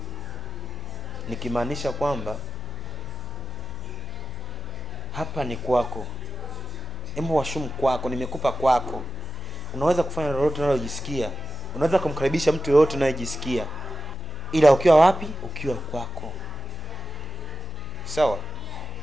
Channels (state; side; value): noise; left; hum, 12 dB below the sound